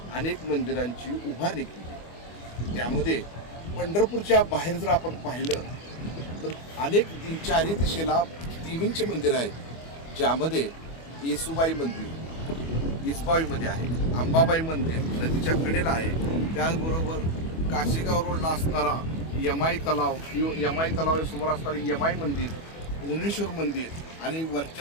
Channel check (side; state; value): right; late; 25 ms